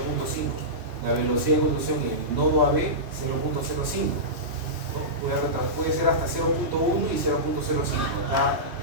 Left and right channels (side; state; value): left; late; 2.9 ms